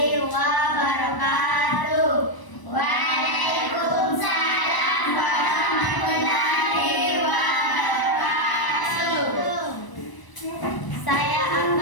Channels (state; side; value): late; right; 1.0 ms